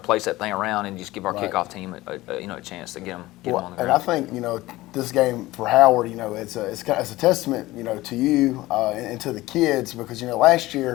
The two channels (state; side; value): quieter; right; 18.2 dB